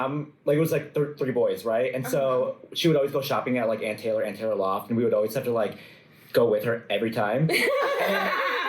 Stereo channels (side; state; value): both; identical; correlation 1.00